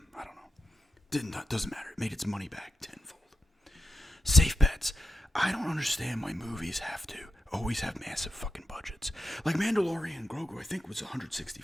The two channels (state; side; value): normal; both; correlation 0.88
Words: I don't know. Doesn't matter. It made its money back tenfold. Safe bets. I don't understand why movies have to always have massive fucking budgets. Like Mandalorian and Grogu, I think was